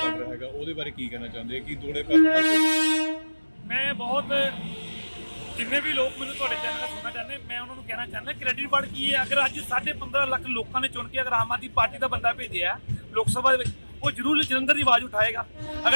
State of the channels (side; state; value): both; inverted; correlation -1.00